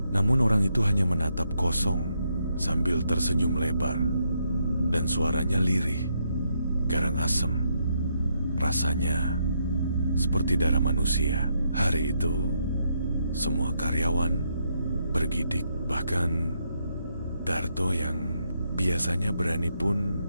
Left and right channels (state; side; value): inverted; both; correlation -0.77